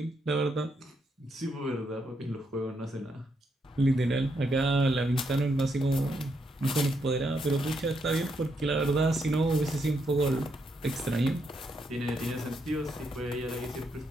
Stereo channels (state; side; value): normal; both; correlation 0.78